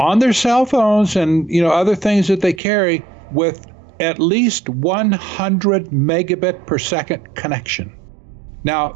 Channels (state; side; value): drops out; left; at 2.6 s